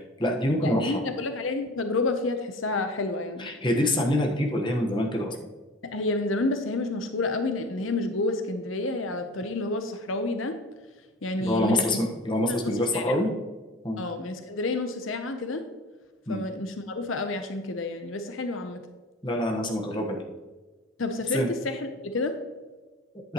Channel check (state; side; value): normal; both; correlation 0.40